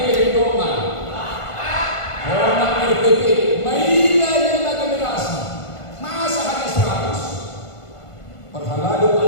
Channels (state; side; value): late; right; 1.5 ms